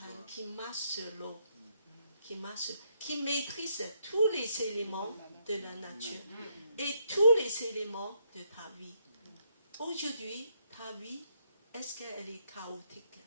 qui marche sur l'eau, qui maîtrise tous les éléments de la nature et tous les éléments de ta vie. Aujourd'hui, ta vie, est-ce qu'elle est chaotique?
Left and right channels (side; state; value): both; inverted; correlation -0.74